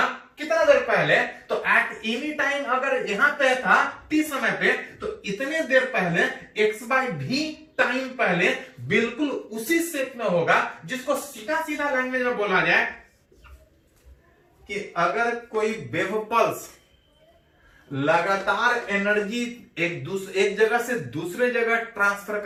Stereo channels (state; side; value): identical; both; correlation 1.00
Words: कितना देर पहले, तो एट एनी टाइम अगर यहां पे था t समय पे, तो इतने देर पहले x/v टाइम पहले बिल्कुल उसी शेप में होगा, जिसको सीधा सीधा लैंग्वेज में बोला जाए कि अगर कोई वेव पल्स लगातार एनर्जी एक जगह से दूसरे जगह ट्रांसफर